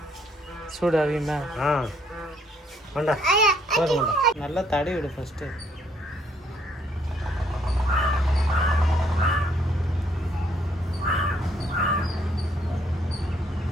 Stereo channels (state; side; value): normal; both; correlation 0.68